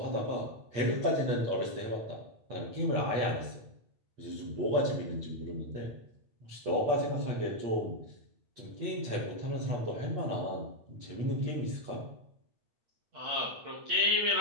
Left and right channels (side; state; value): left; late; 8.4 ms